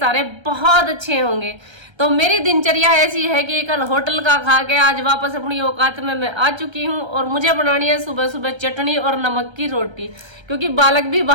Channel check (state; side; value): late; left; 1.3 ms